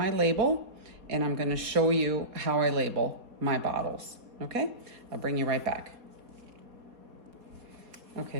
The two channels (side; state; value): left; late; 4.2 ms